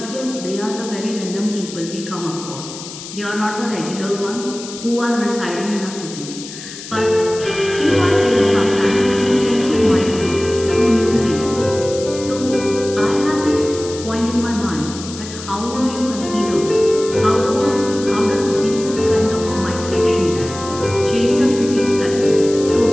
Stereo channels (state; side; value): noise; left; hiss, 12 dB below the sound